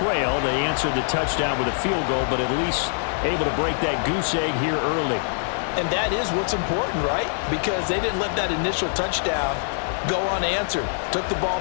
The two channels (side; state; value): right; silent; digital silence